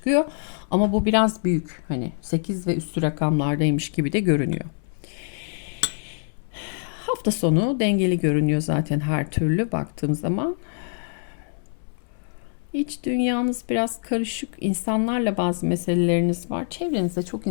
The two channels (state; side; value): silent; right; 62 dB below the other